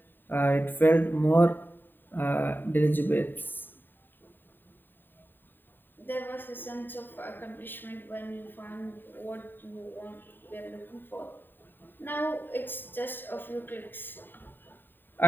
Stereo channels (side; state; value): right; late; 0.094 ms